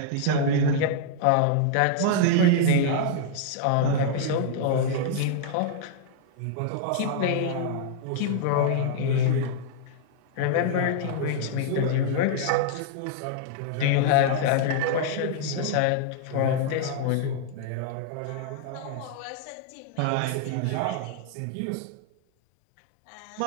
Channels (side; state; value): both; different; correlation -0.01